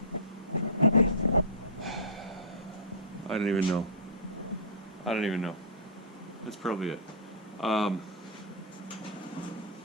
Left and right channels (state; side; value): normal; both; correlation -0.18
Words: I don't even know. I don't even know. That's probably it.